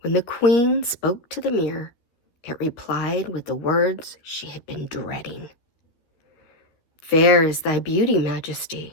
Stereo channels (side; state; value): right; late; 13 ms